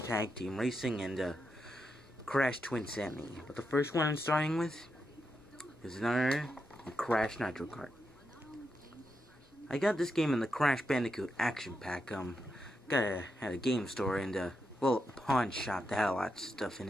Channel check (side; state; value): both; normal; correlation 0.85